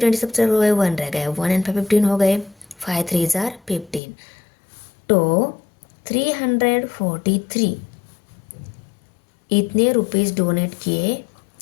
सब्सट्रैक्ट हो गए, 1 रह गए, 1 and 5 15 हो गए, 5 3 ज़ा 15, तो 343 इतने रुपीज़ डोनेट किए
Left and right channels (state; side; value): drops out; right; at 4.0 s